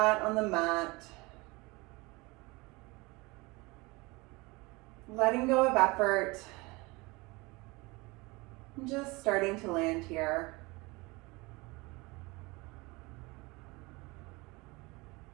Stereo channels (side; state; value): left; quieter; 24.4 dB